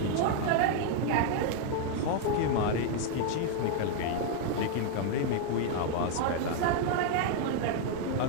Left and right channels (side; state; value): both; different; correlation 0.00